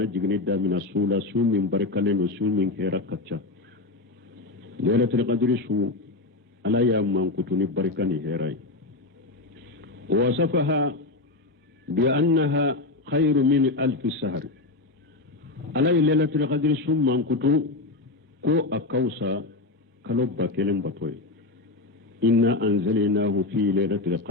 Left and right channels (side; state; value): right; quieter; 3.1 dB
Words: jigni damina sula su min barkaleno su min herakacca lailatul qadri su ala ya man kutu ni barkani herai wasafaha bi annaha khairu min alf shahr ala lailatul qadri su man kutu ko akausa kalobba kelen batoy inna anzalnahu fi lailatul